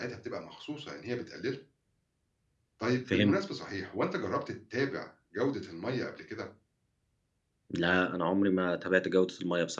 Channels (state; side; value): identical; both; correlation 1.00